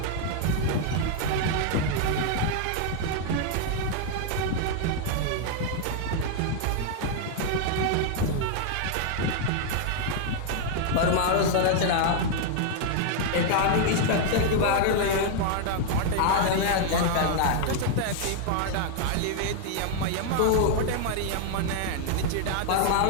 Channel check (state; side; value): different; both; correlation 0.00